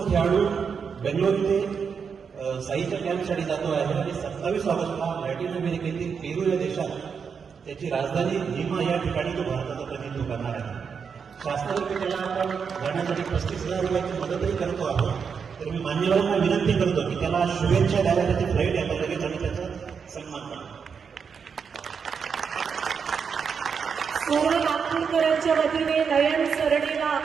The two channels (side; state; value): left; quieter; 6.3 dB